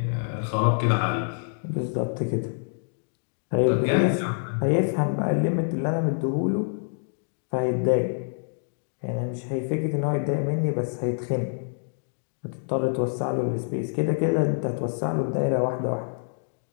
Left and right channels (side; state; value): right; silent; digital silence